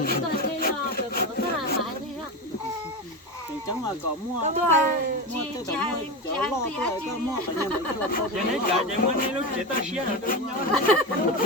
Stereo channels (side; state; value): both; normal; correlation 0.19